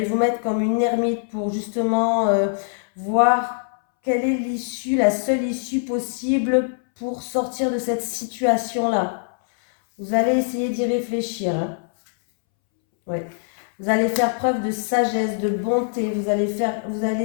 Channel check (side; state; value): right; silent; 64 dB below the other